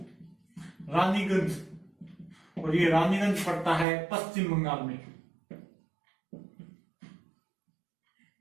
रानीगंज, और ये रानीगंज पड़ता है पश्चिम बंगाल में।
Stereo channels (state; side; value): drops out; left; at 3.9 s